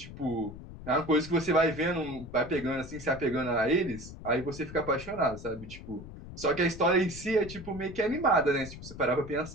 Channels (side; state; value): left; noise; rumble, 13 dB below the sound